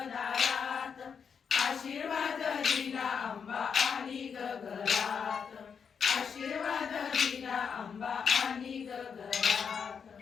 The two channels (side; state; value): right; quieter; 6.6 dB